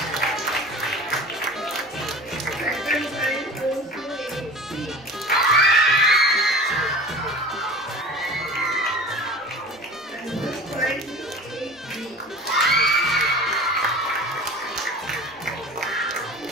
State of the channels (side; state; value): both; normal; correlation 0.39